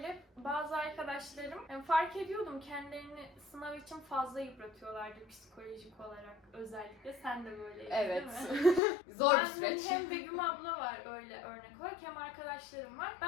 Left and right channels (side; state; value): right; drops out; at 8.8 s